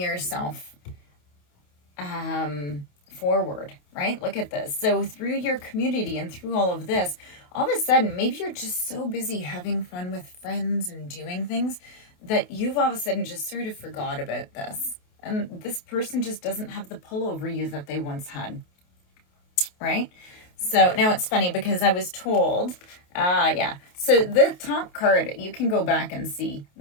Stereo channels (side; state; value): right; late; 28 ms